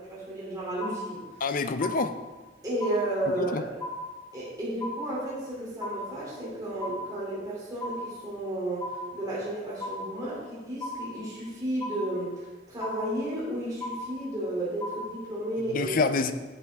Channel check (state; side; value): normal; both; correlation 0.34